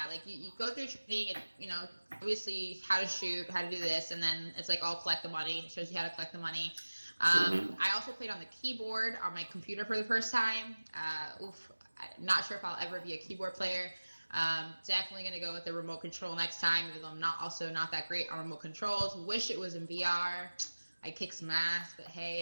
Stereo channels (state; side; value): inverted; both; correlation -1.00